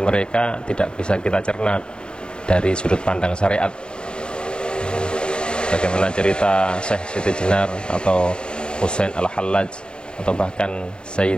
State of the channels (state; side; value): late; right; 0.050 ms